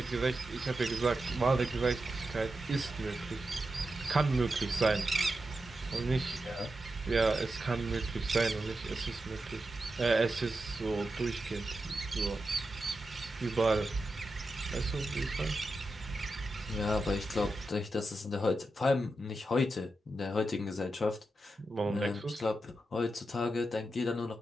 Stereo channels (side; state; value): both; normal; correlation 0.89